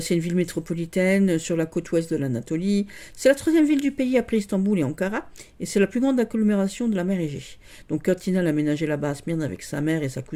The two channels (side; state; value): both; identical; correlation 1.00